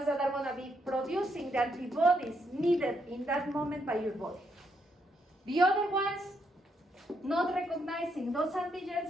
that are going to be producing the antibodies needed in that moment by your body. The other ones, not recognizing those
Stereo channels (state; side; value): normal; both; correlation 0.76